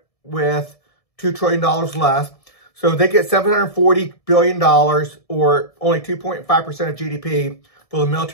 with $2 trillion less. So they get $740 billion, or only 2.5% of GDP for the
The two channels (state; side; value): late; right; 1.7 ms